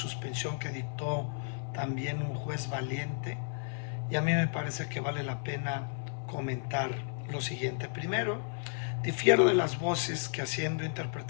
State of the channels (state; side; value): silent; right; 56 dB below the other